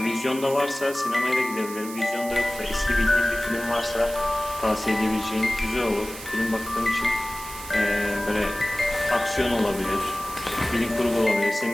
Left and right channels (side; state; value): right; noise; hiss, 13 dB below the sound